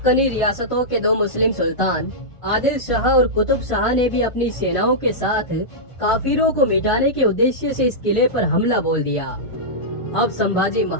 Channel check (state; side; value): late; right; 1.4 ms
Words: रियासतों के 2 मुस्लिम सुल्तान आदिल शाह और कुतुब शाह ने भी अपनी सेनाओं के साथ काफिरों को मिटाने के उद्देश्य से इस किले पर हमला बोल दिया। अब संभाजी